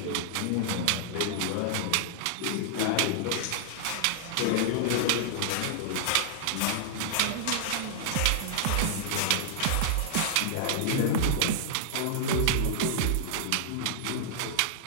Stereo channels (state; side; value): different; both; correlation -0.01